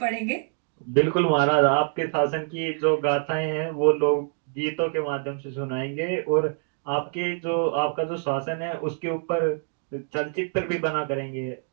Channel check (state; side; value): silent; left; 56 dB below the other